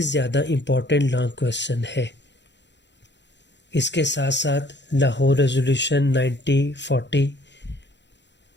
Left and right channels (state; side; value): late; right; 0.52 ms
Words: زیادہ امپورٹنٹ لانگ کویشچن ہے۔ اس کے ساتھ ساتھ لاہور ریزولوشن 1940،